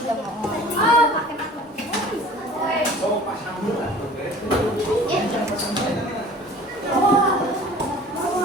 mau. Oh, pasang dulu.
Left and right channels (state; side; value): normal; both; correlation 0.46